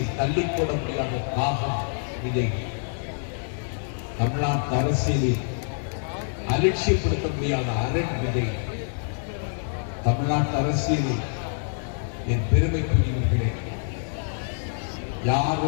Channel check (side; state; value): right; silent; digital silence